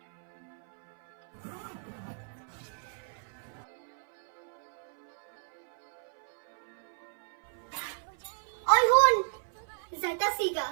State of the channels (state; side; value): silent; left; 56 dB below the other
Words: ওই হুন যাইতাছি গা।